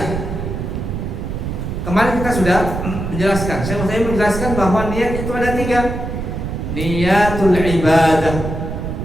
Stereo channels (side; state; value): right; noise; rumble, 4 dB below the sound